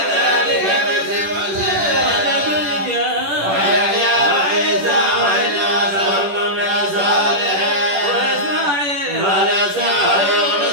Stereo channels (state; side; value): late; left; 10 ms